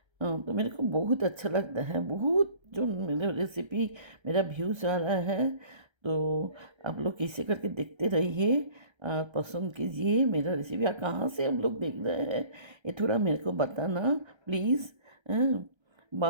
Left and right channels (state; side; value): late; left; 1.3 ms